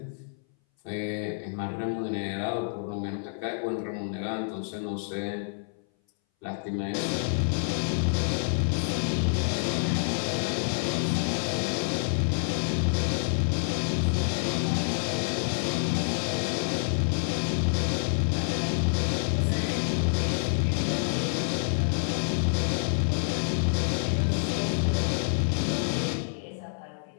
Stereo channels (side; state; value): right; silent; 58 dB below the other